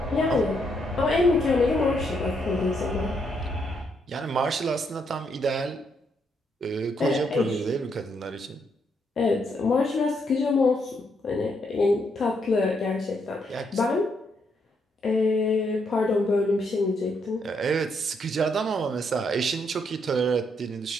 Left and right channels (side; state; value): both; normal; correlation 0.76